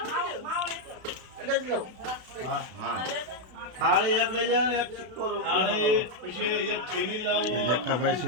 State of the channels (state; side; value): late; left; 32 ms